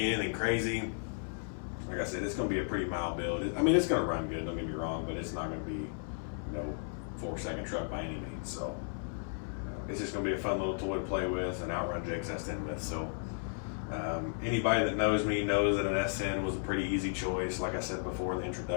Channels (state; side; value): silent; right; digital silence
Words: anything crazy. Like I said, it's going to be a pretty mild build. I mean, it's going to run good. Don't get me wrong, but it's not going to be, you know, 4-second truck by any means. So it's just going to be a fun little toy to play with and outrun Jake's S10 with. So anybody that knows me knows that an S10 was a pretty easy choice. Like I said before, the